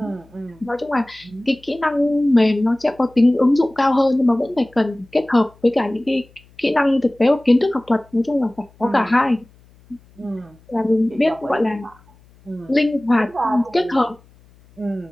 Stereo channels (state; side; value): noise; left; hum, 29 dB below the sound